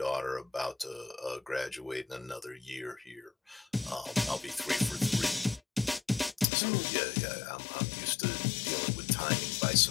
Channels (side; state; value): right; drops out; at 6.5 s